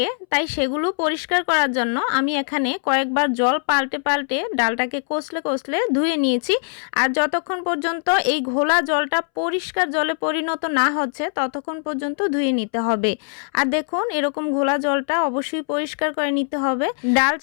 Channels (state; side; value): silent; right; 64 dB below the other